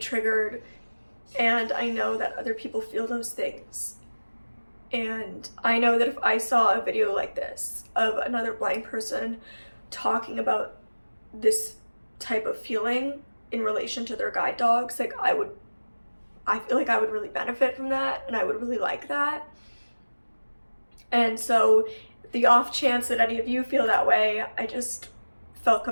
And I know that other people feel those things. And I know that if I saw a video like this of another blind person talking about this type of feeling in relation to their guide dogs, like I feel like I would really benefit from that, and I would really like that. And so the off chance that any of you feel that way, I just felt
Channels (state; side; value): inverted; both; correlation -1.00